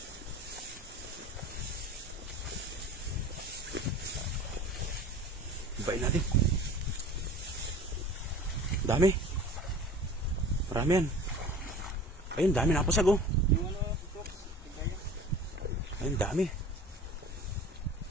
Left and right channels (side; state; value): both; normal; correlation 0.41